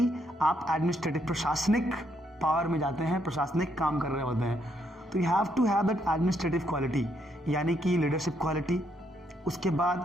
आप एडमिनिस्ट्रेटिव, प्रशासनिक पावर में जाते हैं, प्रशासनिक काम कर रहे होते हैं। तो you have to have that administrative quality, यानी कि लीडरशिप क्वालिटी, उसके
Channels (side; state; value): both; normal; correlation 0.74